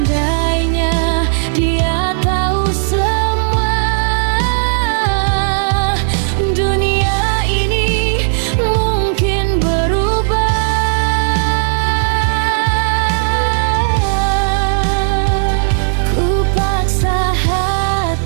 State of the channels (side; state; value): left; silent; digital silence